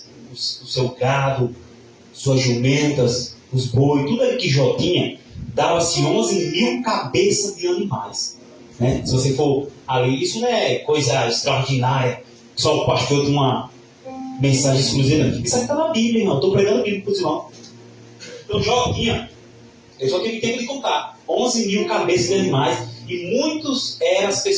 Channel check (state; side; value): identical; both; correlation 1.00